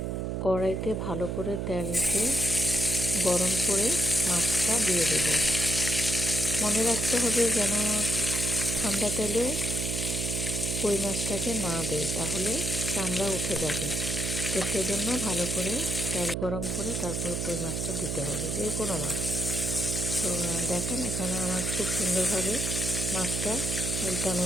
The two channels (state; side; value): noise; right; hum, 2 dB below the sound